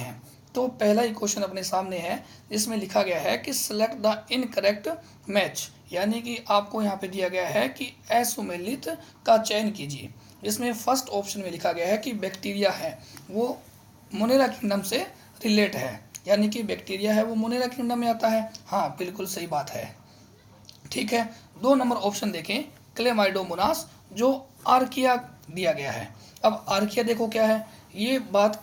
तो पहला ही क्वेश्चन अपने सामने है, जिसमें लिखा गया है कि सेलेक्ट द इनकरेक्ट मैच, यानी कि आपको यहाँ पे दिया गया है कि असुमेलित का चयन कीजिए। इसमें फर्स्ट ऑप्शन में लिखा गया है कि बैक्टीरिया है वो मोनेरा किंगडम से रिलेट है, यानी कि बैक्टीरिया है वो मोनेरा किंगडम में आता है। हाँ, बिल्कुल सही बात है। ठीक है, 2 नंबर ऑप्शन देखें, क्लेमाइडोमोनास जो आर्किया दिया गया है। अब आर्किया देखो क्या है, ये बात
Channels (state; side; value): identical; both; correlation 1.00